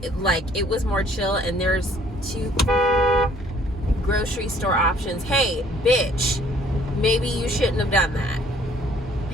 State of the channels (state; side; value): normal; both; correlation 0.59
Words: Like it was more chill, and there's 2 grocery store options. Hey, bitch, maybe you shouldn't have done that. I